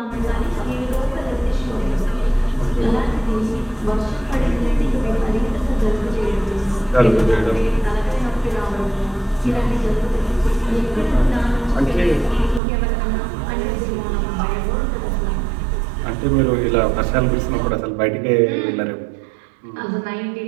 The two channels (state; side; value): drops out; left; at 12.6 s